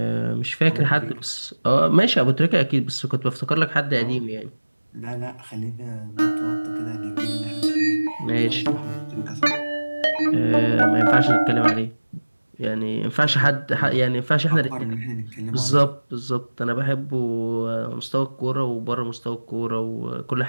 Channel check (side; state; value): both; inverted; correlation -1.00